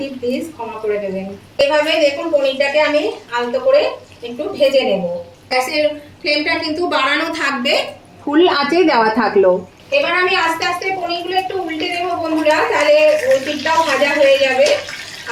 প্লিজ ক্ষমা করে দেবেন। এভাবে দেখুন পনিরটাকে আমি আলতো করে একটু ভেজে নেব। গ্যাসের ফ্লেমটা কিন্তু বাড়ানো থাকবে, ফুল আঁচে দেওয়া থাকলো। এবার আমি আস্তে আস্তে পনিরগুলো একটু উল্টে দেবো বন্ধুরা, তাহলে ওই পিঠটাও ভাজা হয়ে যাবে।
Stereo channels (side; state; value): both; identical; correlation 1.00